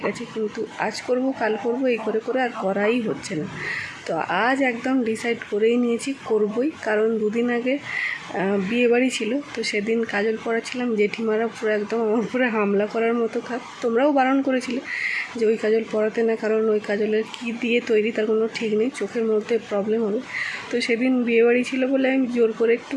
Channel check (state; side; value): identical; both; correlation 1.00